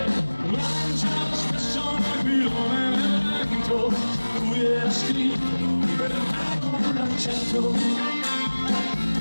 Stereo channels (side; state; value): both; inverted; correlation -1.00